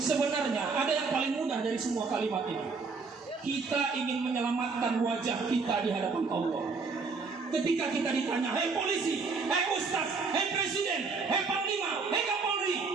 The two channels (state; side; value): quieter; left; 4.6 dB